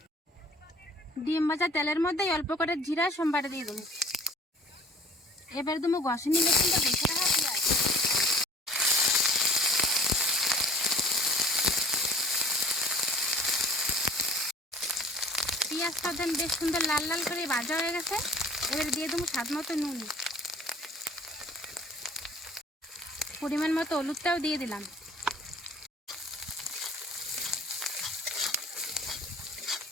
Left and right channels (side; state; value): both; normal; correlation 0.48